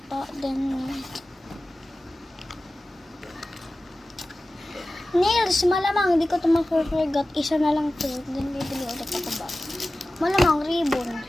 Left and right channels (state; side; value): normal; both; correlation 0.96